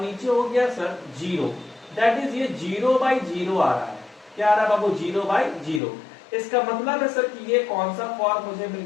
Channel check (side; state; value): right; drops out; at 5.8 s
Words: नीचे हो गया सर 0 दैट इज ये 0/0 आ रहा है। क्या आ रहा है बाबू? 0/0। इसका मतलब है सर कि ये कौन सा फॉर्म मुझे मिल